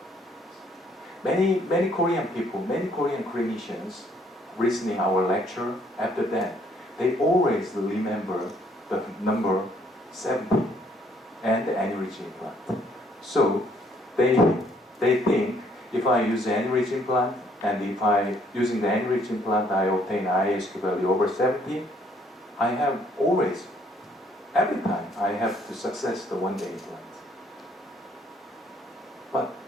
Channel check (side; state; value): both; normal; correlation 0.65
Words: Many Korean people, many Korean clinicians listening our lecture, after that, they always remember the number 70 and the aneurysm implant. So they think if I use the aneurysm implant and if I using the aneurysm implant I obtain ISQ value over 70, I have always, every time I have to success the one-day implant. But